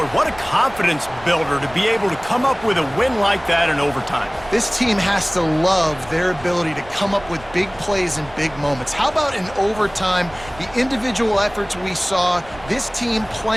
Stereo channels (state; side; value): noise; right; rumble, 20 dB below the sound